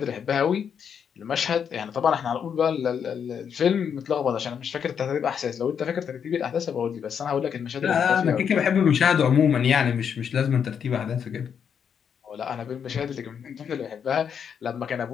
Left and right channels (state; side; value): quieter; right; 7.5 dB